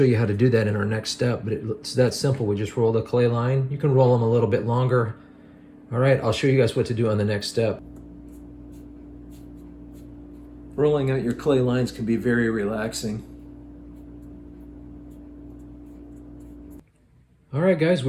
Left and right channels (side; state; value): both; identical; correlation 1.00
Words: you how to do that in our next step, but it's that simple. We just roll the clay line. You can roll them a little bit longer. All right, I'll show you guys what to do on the next step. Rolling out your clay lines can be very relaxing. All right, guys,